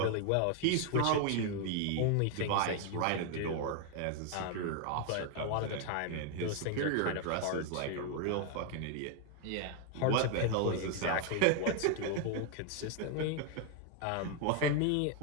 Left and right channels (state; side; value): different; both; correlation 0.00